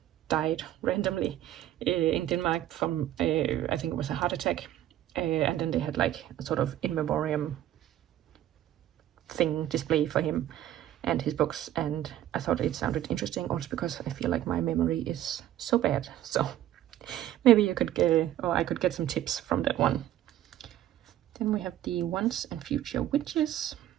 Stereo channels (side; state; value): left; quieter; 12.6 dB